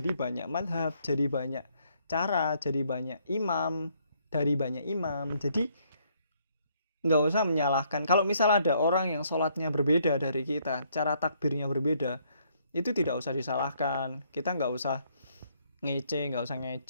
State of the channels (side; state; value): both; inverted; correlation -0.69